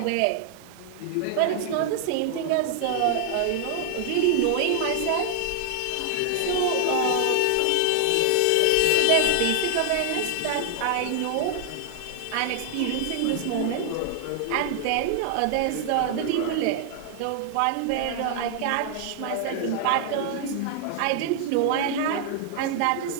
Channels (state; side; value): different; both; correlation 0.00